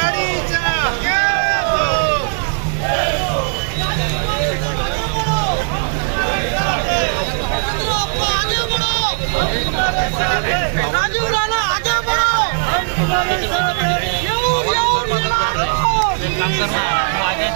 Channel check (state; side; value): silent; left; 62 dB below the other